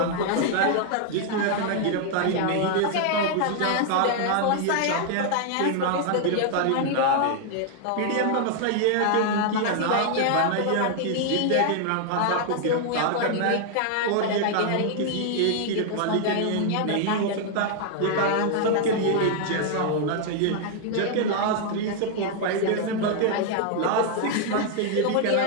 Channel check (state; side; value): different; both; correlation 0.00